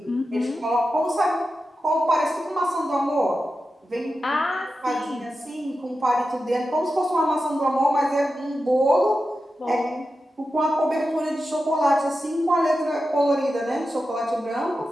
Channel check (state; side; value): normal; both; correlation 0.91